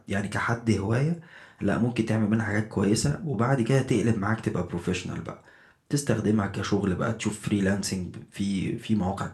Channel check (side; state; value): both; identical; correlation 1.00